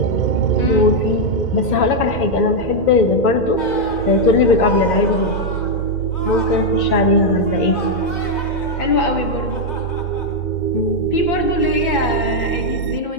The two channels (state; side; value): late; right; 2.1 ms